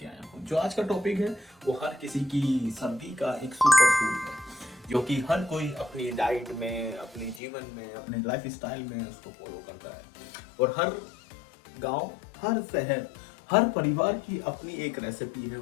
आया हूँ। जो आज का टॉपिक है वो हर किसी की सर्दी का एक सुपर फूड है, जो कि हर कोई अपनी डाइट में, अपने जीवन में, अपने लाइफ स्टाइल में उसको फॉलो करता है। और हर गांव, हर शहर, हर परिवार की अपनी एक रेसिपी है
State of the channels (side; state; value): right; drops out; at 7.4 s